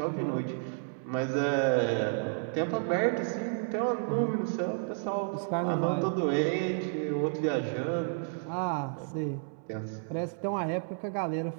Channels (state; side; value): silent; left; 57 dB below the other